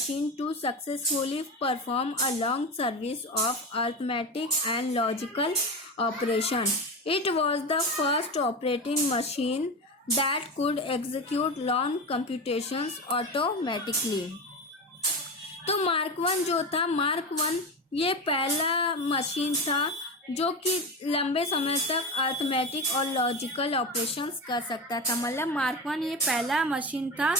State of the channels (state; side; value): normal; both; correlation 0.22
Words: to successfully perform a long series of arithmetic and logical operation. It was the first operating machine that could execute long computations automatically. तो mark one ये पहला machine था जो कि लंबे समय तक arithmetic और लॉजिकल ऑपरेशंस कर सकता था। मतलब मार्क वन ये पहला मशीन था